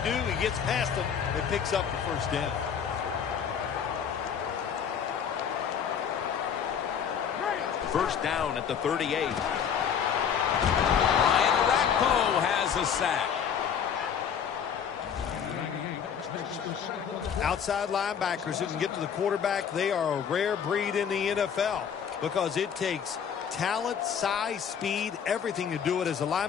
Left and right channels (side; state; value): right; quieter; 7.7 dB